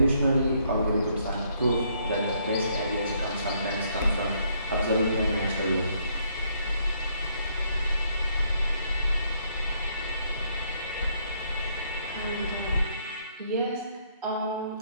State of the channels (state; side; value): inverted; both; correlation -0.69